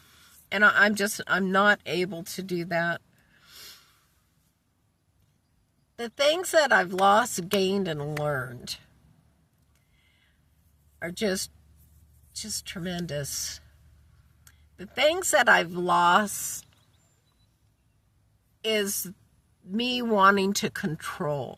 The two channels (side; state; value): both; identical; correlation 1.00